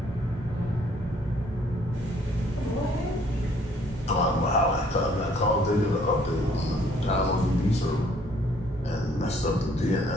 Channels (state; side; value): normal; both; correlation 0.62